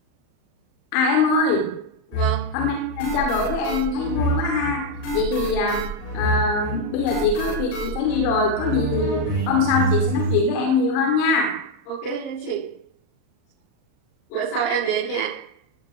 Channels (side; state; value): right; late; 38 ms